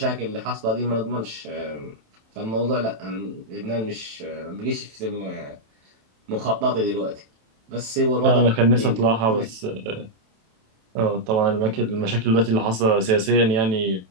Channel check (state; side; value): late; left; 27 ms